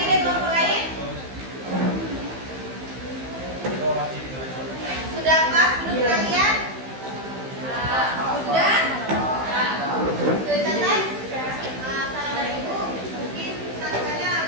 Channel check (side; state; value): left; late; 15 ms